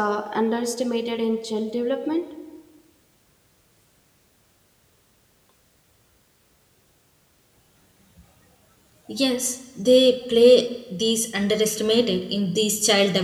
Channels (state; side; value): identical; both; correlation 1.00